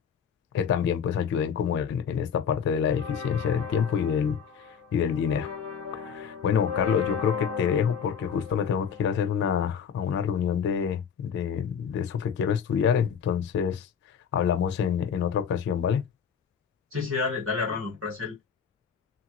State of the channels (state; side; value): quieter; right; 7.1 dB